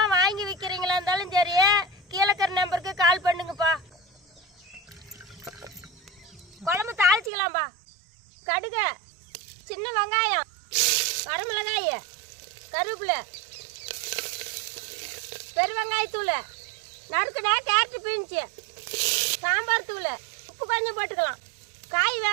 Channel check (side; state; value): left; drops out; at 7.3 s